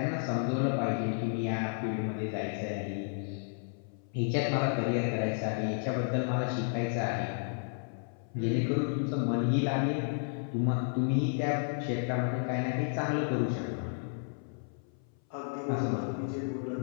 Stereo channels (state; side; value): silent; right; 56 dB below the other